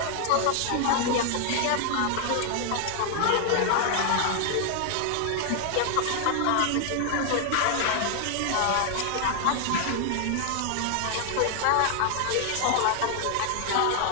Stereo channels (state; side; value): different; both; correlation 0.00